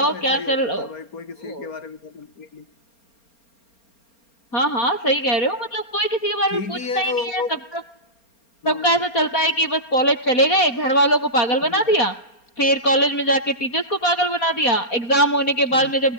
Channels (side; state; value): right; late; 4.3 ms